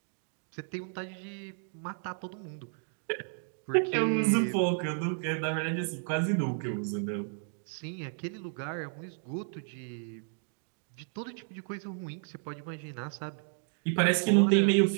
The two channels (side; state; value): left; silent; 56 dB below the other